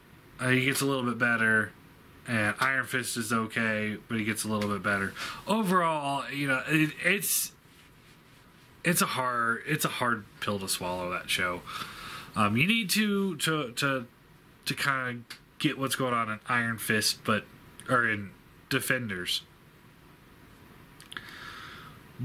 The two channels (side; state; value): both; identical; correlation 1.00